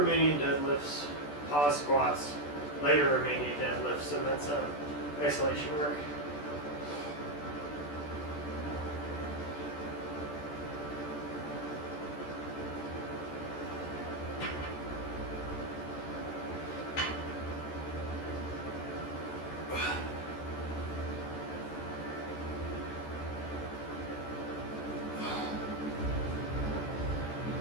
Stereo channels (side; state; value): right; late; 14 ms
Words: deadlifts, pause squats, lighter Romanian deadlifts, and then some isolation work.